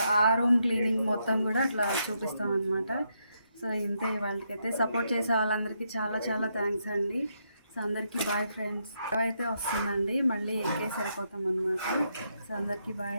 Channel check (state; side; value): inverted; both; correlation -0.79